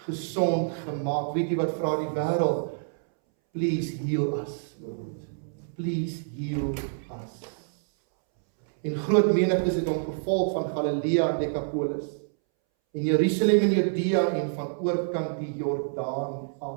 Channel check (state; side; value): silent; left; 60 dB below the other